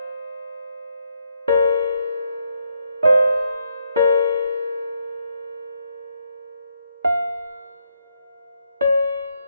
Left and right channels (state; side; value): inverted; both; correlation -0.77